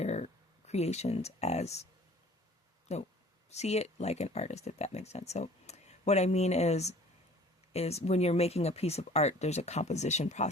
creations as see it like an artist, if that makes sense. So what I mean is when you're making a piece of art, there's a composition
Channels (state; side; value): normal; both; correlation 0.49